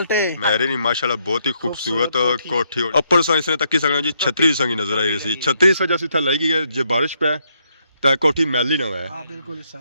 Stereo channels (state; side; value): inverted; both; correlation -0.75